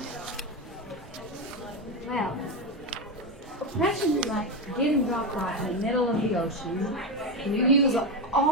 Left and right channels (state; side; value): normal; both; correlation 0.13